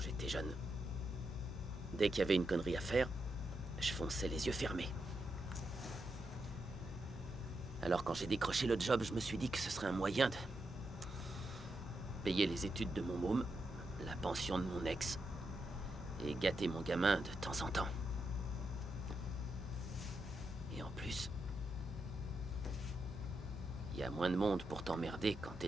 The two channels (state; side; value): normal; both; correlation 0.84